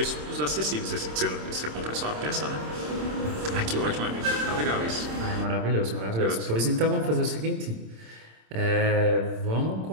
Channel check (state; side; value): late; left; 26 ms